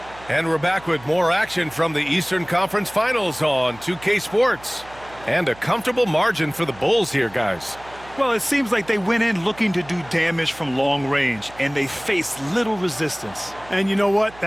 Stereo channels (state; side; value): noise; right; hum, 21 dB below the sound